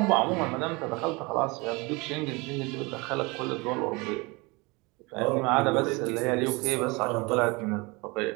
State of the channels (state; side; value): quieter; left; 26.2 dB